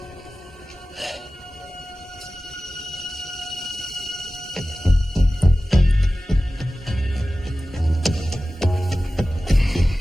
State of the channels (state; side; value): normal; both; correlation 0.96